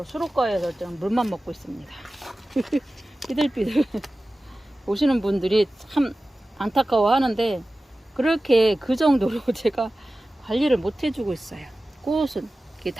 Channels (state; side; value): normal; both; correlation 0.96